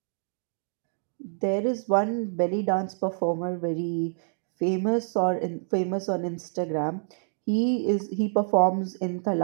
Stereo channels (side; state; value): left; silent; digital silence